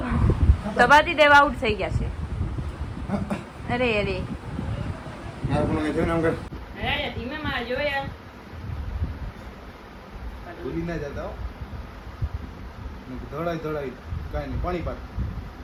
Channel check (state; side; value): identical; both; correlation 1.00